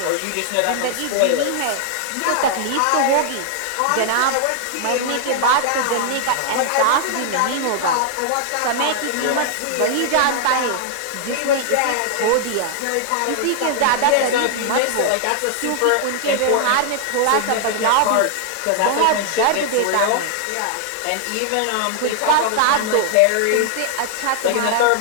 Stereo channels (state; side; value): different; both; correlation 0.00